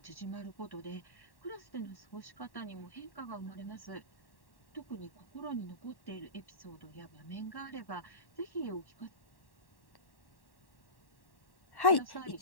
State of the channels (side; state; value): right; late; 1.1 ms